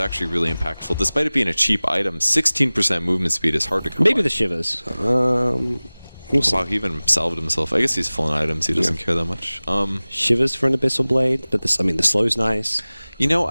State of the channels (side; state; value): both; inverted; correlation -0.99